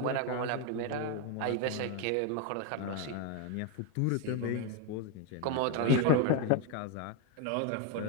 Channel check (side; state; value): both; different; correlation 0.01